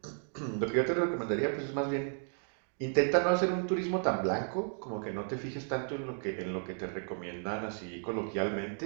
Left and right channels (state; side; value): silent; left; 55 dB below the other